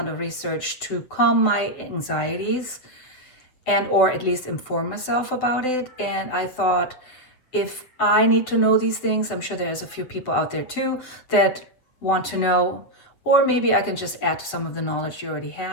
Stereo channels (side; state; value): right; late; 8.1 ms